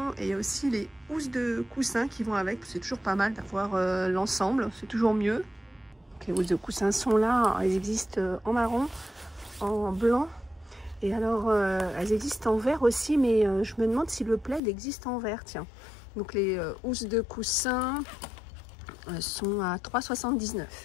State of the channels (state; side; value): drops out; right; at 14.6 s